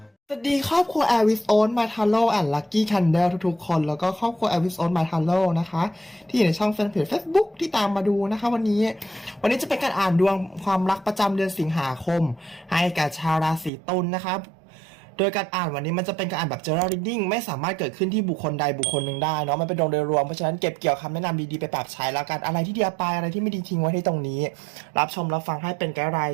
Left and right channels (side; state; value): left; drops out; at 13.7 s